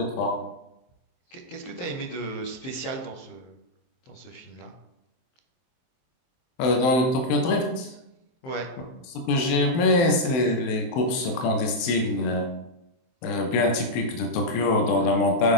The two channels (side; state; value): right; late; 23 ms